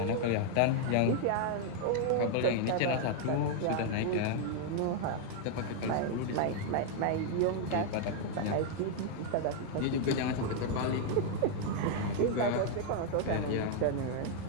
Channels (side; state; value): both; different; correlation 0.00